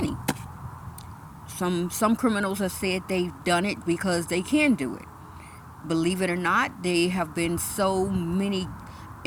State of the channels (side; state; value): both; identical; correlation 1.00